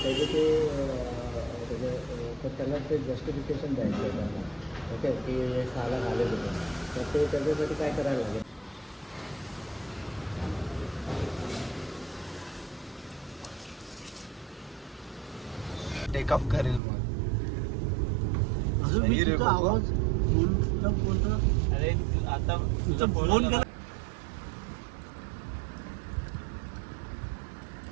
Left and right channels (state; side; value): drops out; left; at 16.8 s